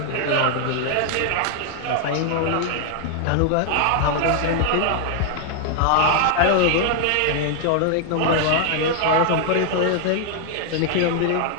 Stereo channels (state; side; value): different; both; correlation 0.00